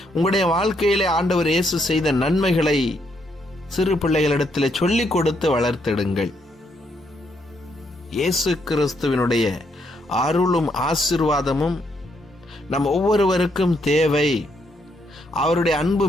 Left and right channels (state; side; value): normal; both; correlation 0.75